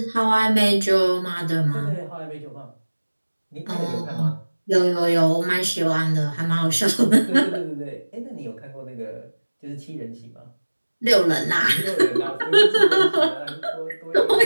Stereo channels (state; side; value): inverted; both; correlation -1.00